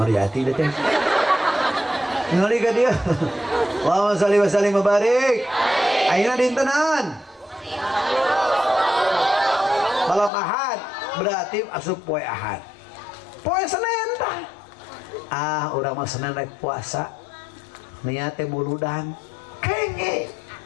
teh ngali ka dia Allahumma shalli wa sallim wa barik. Ayeuna dinten naon? Malam Ahad berarti asup poe Ahad. Poe Senin tah. Urang mah Senin rek puasa. Niat teh muludan. Kenge.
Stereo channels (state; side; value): drops out; right; at 10.3 s